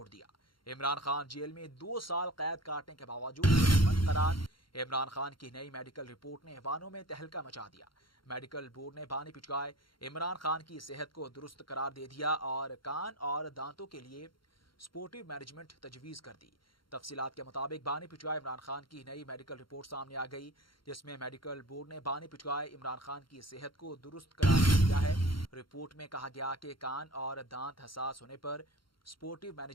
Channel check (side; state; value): right; late; 0.73 ms